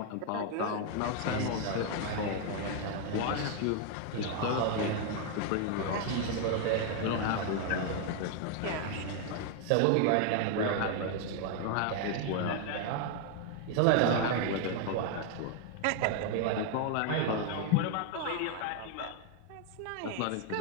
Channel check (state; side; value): different; both; correlation 0.00